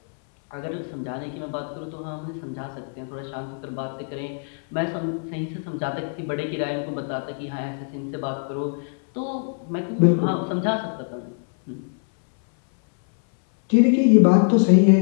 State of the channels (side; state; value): right; silent; 60 dB below the other